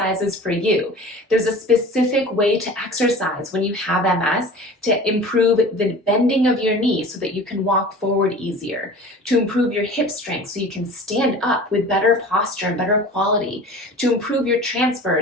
for you. There's a specific way to exercise when you have MS to improve the bending of your knee so that you can walk forward easier, to improve your hip strength so you can stand up with better posture and better quality, to improve your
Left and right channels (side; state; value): both; normal; correlation 0.40